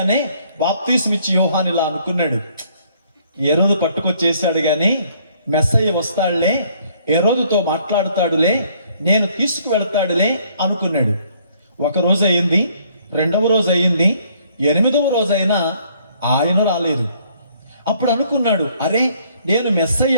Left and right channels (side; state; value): both; inverted; correlation -0.63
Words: బాప్తిస్మిచ్చి యోహాను ఇలా అనుకున్నాడు, హేరోదు పట్టుకొచ్చేసాడు కానీ మెస్సయ్య వస్తాడులే, హేరోదుతో మాట్లాడుతాడులే, నేను తీసుకువెళ్తాడులే అనుకున్నాడు. ఒక రోజు అయింది, రెండవ రోజు అయింది, 8వ రోజైనా ఆయన రాలేదు. అప్పుడు అనుకున్నాడు, అరే నేను